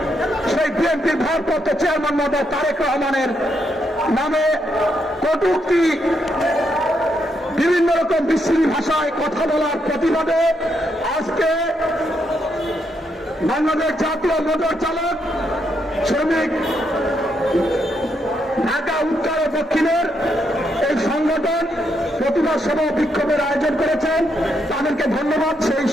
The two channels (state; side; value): normal; both; correlation 0.78